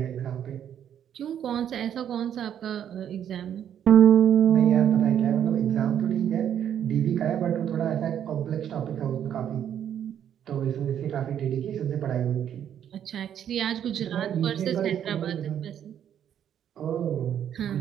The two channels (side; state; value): left; quieter; 9.6 dB